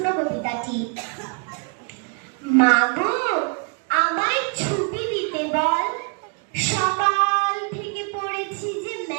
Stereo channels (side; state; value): left; quieter; 34.5 dB